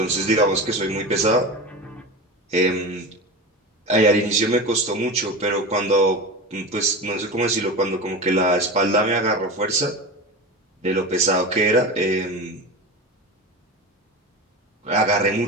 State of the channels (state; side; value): normal; both; correlation 0.27